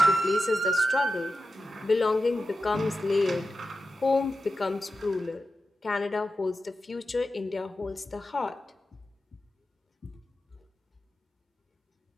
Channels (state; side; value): normal; both; correlation 0.92